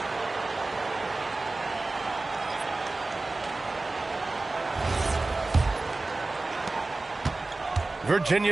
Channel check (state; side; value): quieter; left; 3.3 dB